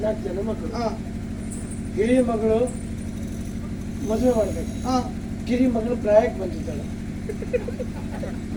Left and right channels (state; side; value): identical; both; correlation 1.00